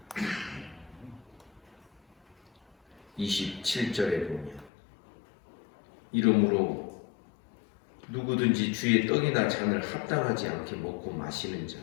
합니다. 27절에 보면 이러므로 누구든지 주의 떡이나 잔을 합당하지 않게 먹고 마시는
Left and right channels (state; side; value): drops out; right; at 4.7 s